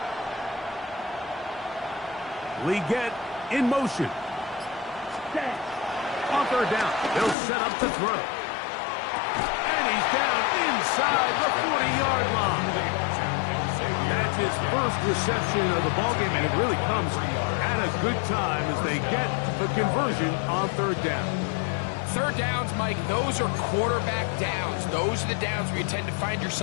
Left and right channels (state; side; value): drops out; right; at 7.4 s